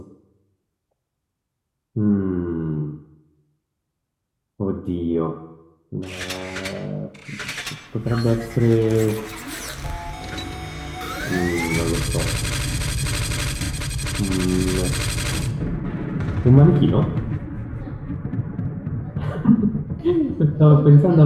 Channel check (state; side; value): identical; both; correlation 1.00